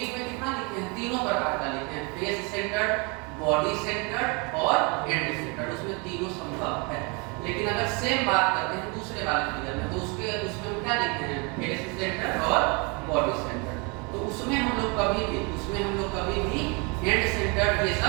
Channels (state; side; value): quieter; left; 31.3 dB